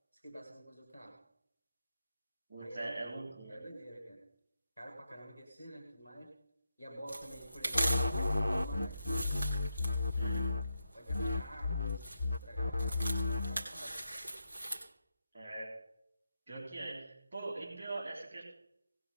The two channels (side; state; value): both; inverted; correlation -0.86